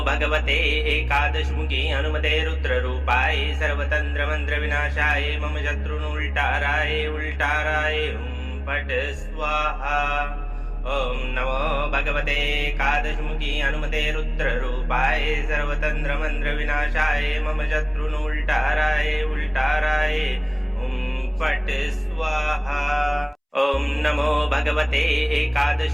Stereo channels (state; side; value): identical; both; correlation 1.00